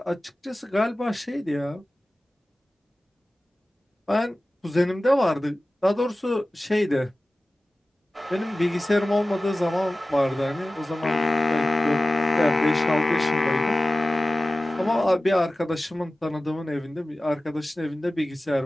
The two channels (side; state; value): both; normal; correlation 0.96